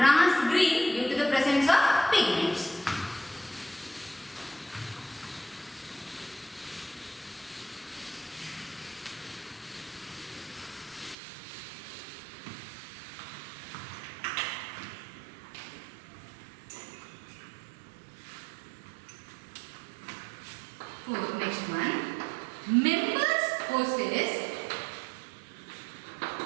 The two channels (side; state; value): left; drops out; at 11.2 s